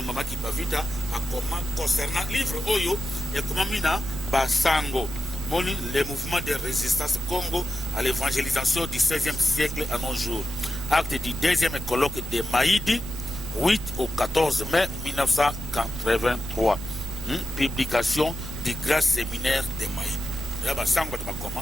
mama Kipavita akoma concernant livre oyo ekomami na basango moni le mouvement de résistance Congo à l'évangélisation du 16e siècle à nos jours acte du 2e colloque de Maïdi 8 au 14 mai 1983 publication du grand séminaire de Maïdi ya basango bato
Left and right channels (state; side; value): noise; right; rumble, 9 dB below the sound